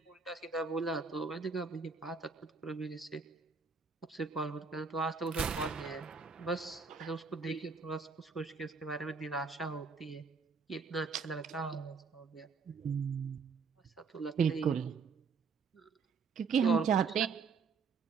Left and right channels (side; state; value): left; quieter; 5.1 dB